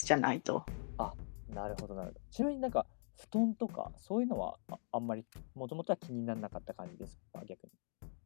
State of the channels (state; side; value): silent; right; digital silence